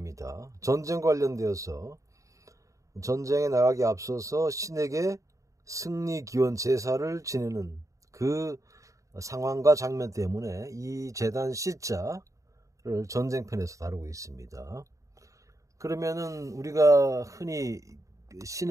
전쟁 관련되어서 전쟁에 나가기 앞서서 신에게 승리 기원 제사를 지내는 그 상황과 장면 때문에 이 제단 시자를 전쟁편에서 다루고 있습니다. 그러면은 우리가 흔히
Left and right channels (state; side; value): late; left; 0.16 ms